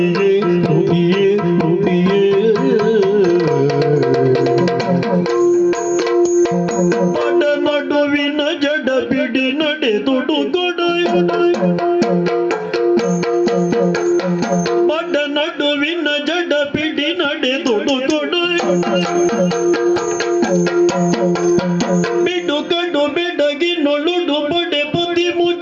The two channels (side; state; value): both; identical; correlation 1.00